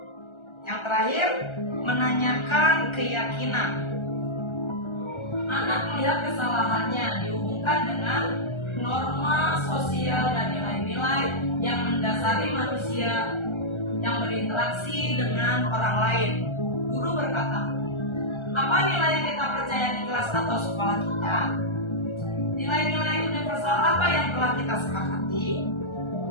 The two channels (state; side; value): late; right; 1.3 ms